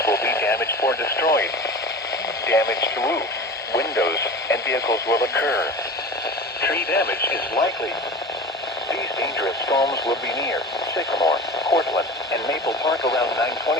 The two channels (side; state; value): both; normal; correlation 0.35